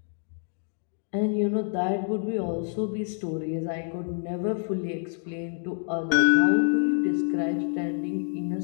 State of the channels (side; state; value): right; silent; 60 dB below the other